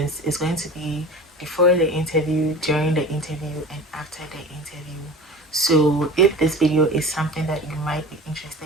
It's going to be before the interview, during the interview, and after the interview. So if this video is something that you might be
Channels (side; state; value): both; normal; correlation 0.37